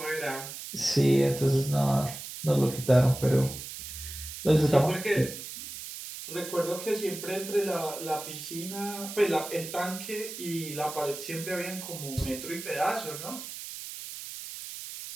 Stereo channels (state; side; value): noise; right; hiss, 10 dB below the sound